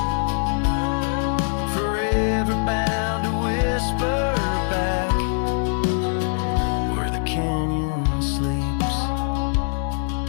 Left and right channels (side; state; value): right; silent; digital silence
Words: forever bound to whisper back, where the canyon sleeps.